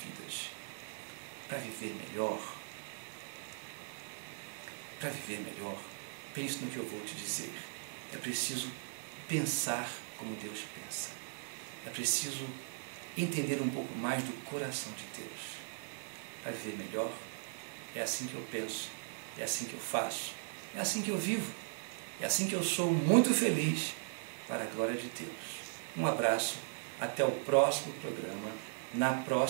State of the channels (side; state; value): left; silent; 52 dB below the other